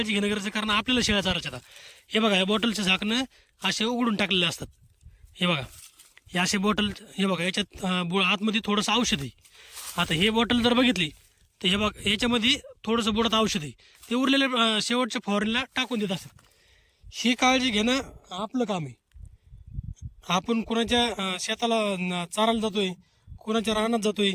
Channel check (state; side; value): identical; both; correlation 1.00